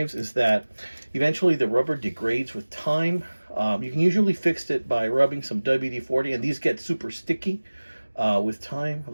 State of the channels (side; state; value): both; inverted; correlation -1.00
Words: is that eventually the rubber degrades with time. You can usually fix it by rubbing some WD-40, and these get super sticky with time.